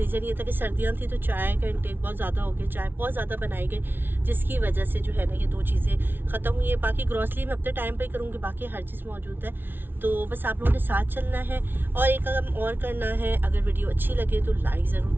ये था कि सर्दियाँ थी तो चाय का इंटेक बहुत ज़्यादा हो गया, चाय बहुत ज़्यादा बनाई गई, जिसकी वजह से जो है ना ये दो चीज़ें ख़त्म हुई है। बाकी ग्रॉसरी मैं अपने टाइम पे ही करूँगी, बाकी हर चीज़ मौजूद है। तो बस आप लोगों ने साथ चलना है और एक काम और करना है, अगर वीडियो अच्छी लगे तो लाइक ज़रूर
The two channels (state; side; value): late; left; 0.10 ms